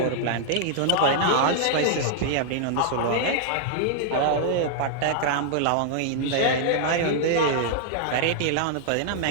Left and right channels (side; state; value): both; different; correlation -0.01